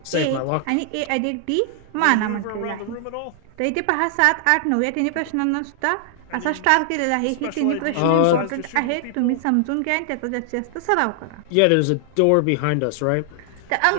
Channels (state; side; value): different; both; correlation 0.00